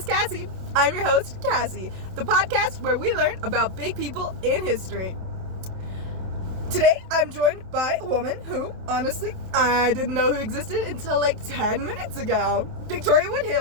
Cassie. I'm your host, Cassie, the podcast where we learn about big people in history. Today, I'm joined by a woman who, honestly, I didn't know who existed until like 10 minutes ago. Victoria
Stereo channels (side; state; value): left; late; 27 ms